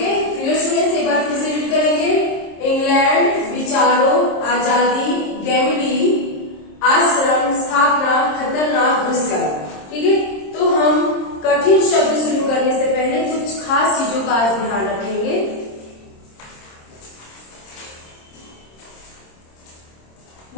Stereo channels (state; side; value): late; right; 26 ms